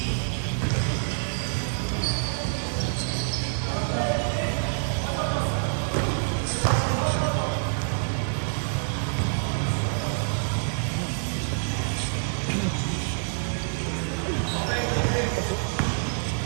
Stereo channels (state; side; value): silent; left; 60 dB below the other